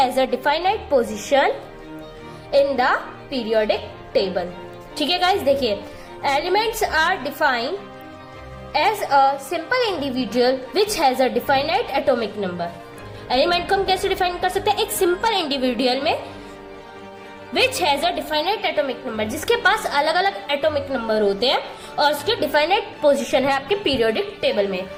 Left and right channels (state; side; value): identical; both; correlation 1.00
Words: a definite position in the periodic table। ठीक है गाइस, देखिए, elements are defined as a simple individual which has a definite atomic number। Element को हम कैसे define कर सकते हैं? एक सिंपल इंडिविजुअल में which has a definite atomic number, जिसके पास अलग अलग एटॉमिक नंबर होते हैं और उसकी डिफाइनेट पोजीशन है आपके पीरियोडिक टेबल में,